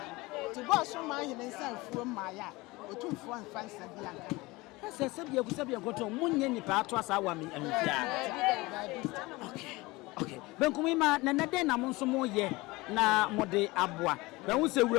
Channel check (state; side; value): quieter; right; 22.0 dB